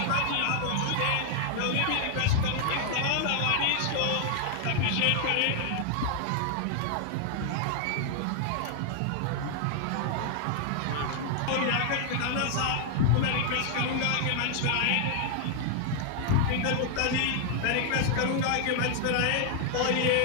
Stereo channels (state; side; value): different; both; correlation 0.00